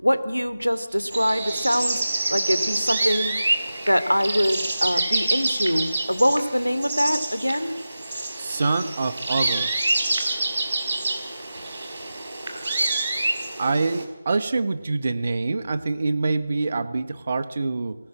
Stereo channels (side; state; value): both; inverted; correlation -0.94